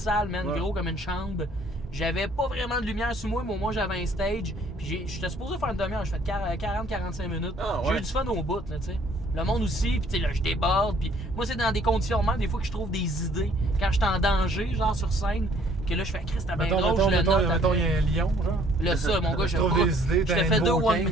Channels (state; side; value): normal; both; correlation 0.61